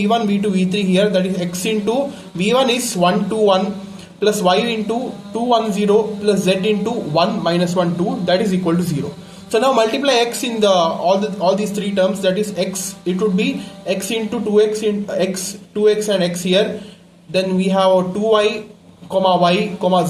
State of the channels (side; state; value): both; identical; correlation 1.00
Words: v2, v3 here, that is x into v1 is 1 2 1 plus y into 2 1 0 plus z into 1 minus 1 2, that is equal to 0. So now multiply x in all these three terms, that is x, it would be x into 2x in x, 2x and x here. Then we have 2y comma y comma